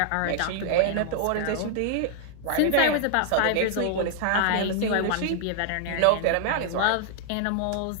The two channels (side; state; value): both; different; correlation -0.01